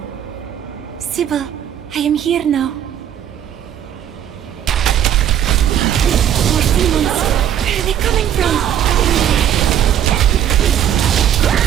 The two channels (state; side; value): quieter; left; 10.2 dB